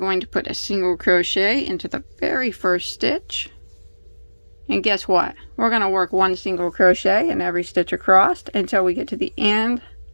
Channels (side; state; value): both; inverted; correlation -1.00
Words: to put a single crochet into the very first stitch. And guess what? We're going to work 1 single crochet in every stitch across until we get to the end